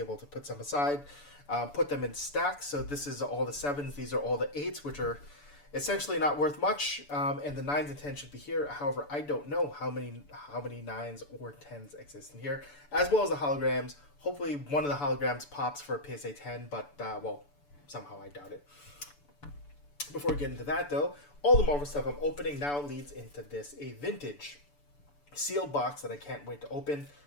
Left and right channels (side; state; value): right; late; 6.9 ms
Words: to put some aside, put them in stacks, so this is all the 7s, these are all the 8s, which are essentially not worth much, and the 9s and 10s should be here. However, I don't know how many 9s or 10s exist in here, as well as the holograms. Hopefully one of the holograms pops for a PSA 10, but, well, somehow I doubt it. Before we get into that, though, all the Marvel stuff I'm opening now leads into this, a vintage sealed box that I can't wait to open.